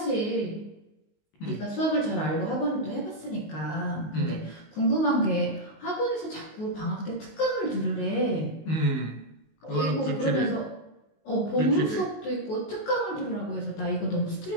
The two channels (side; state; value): right; late; 19 ms